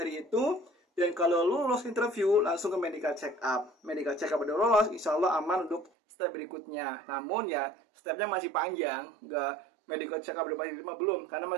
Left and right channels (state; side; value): drops out; left; at 5.9 s